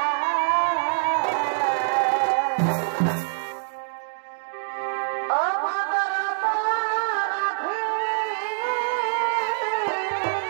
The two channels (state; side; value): silent; left; digital silence